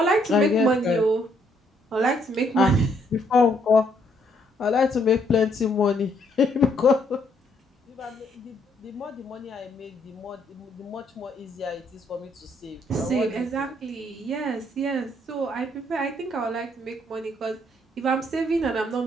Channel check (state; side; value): normal; both; correlation 0.70